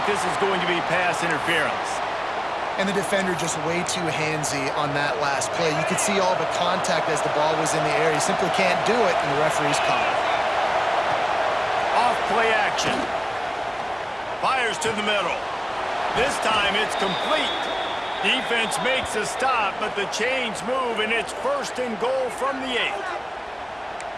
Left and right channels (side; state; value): both; identical; correlation 1.00